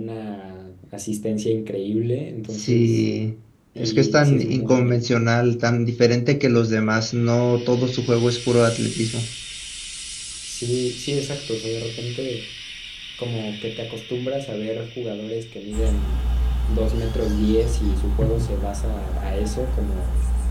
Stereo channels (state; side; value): identical; both; correlation 1.00